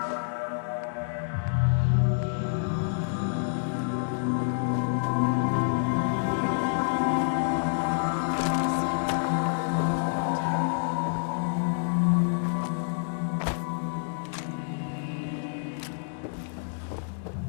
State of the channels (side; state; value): right; silent; digital silence